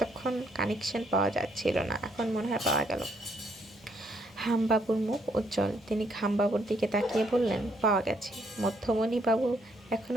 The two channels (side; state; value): both; normal; correlation 0.71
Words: কানেকশন পাওয়া যাচ্ছিল না, এখন মনে হয় পাওয়া গেল। হামবাবুর মুখ উজ্জ্বল। তিনি খামবাবুর দিকে তাকিয়ে বললেন, পাওয়া গেছে। মধ্যমণি বাবু